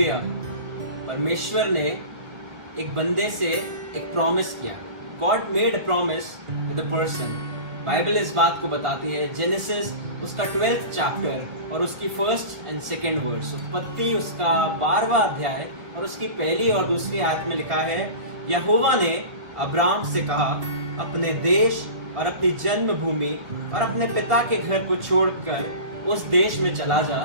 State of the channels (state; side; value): late; left; 1.7 ms